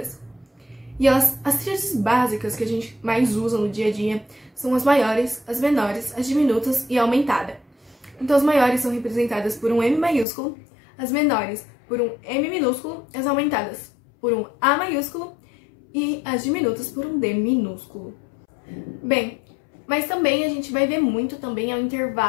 E as tríades básicas que a gente mais usa no dia a dia são as maiores, as menores, as diminutas e a aumentada. Então as maiores são representadas por um M maiúsculo, as menores por um M minúsculo, as aumentadas por um A maiúsculo e as diminutas por um D minúsculo. Bem, mas também a gente vai ver muito também ao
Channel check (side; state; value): right; drops out; at 10.2 s